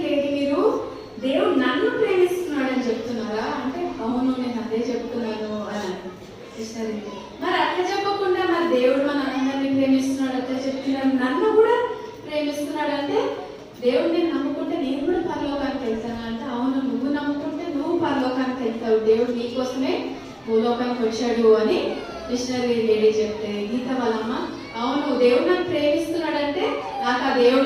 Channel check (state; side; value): identical; both; correlation 1.00